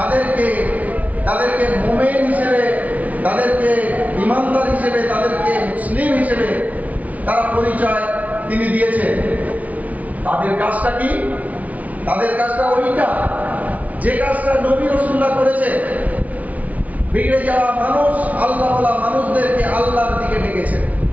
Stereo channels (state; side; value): late; left; 0.071 ms